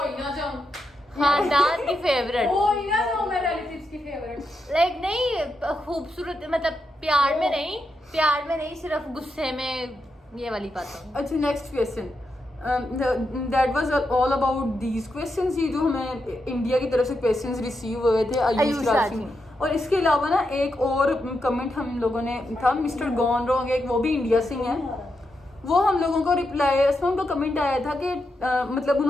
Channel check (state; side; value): normal; both; correlation 0.85